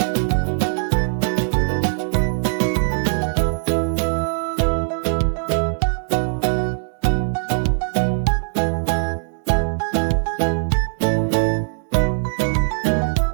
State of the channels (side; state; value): left; silent; digital silence